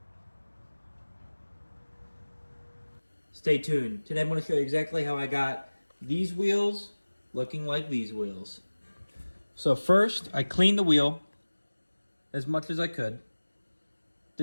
stay tuned. Today I'm going to show you exactly how I got these wheels looking like these wheels. So first, I cleaned the wheel as much as I could.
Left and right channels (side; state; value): both; inverted; correlation -1.00